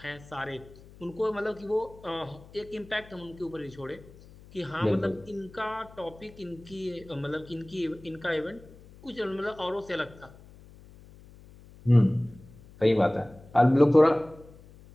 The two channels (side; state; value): left; noise; hum, 21 dB below the sound